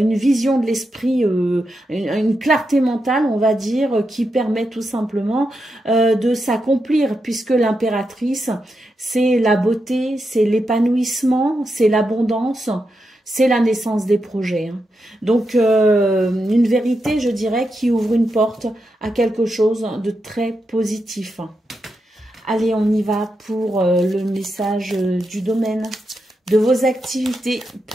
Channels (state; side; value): normal; both; correlation 0.86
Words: vision de l'esprit, une clarté mentale, on va dire, qui permet tout simplement de s'accomplir, puisque l'impératrice, c'est la beauté, c'est l'épanouissement, c'est l'abondance, c'est la naissance des projets, hein. Donc, une vérité, je dirais, qui ouvre une porte à quelque chose de très positif. Allez, on y va pour le message du domaine de vos activités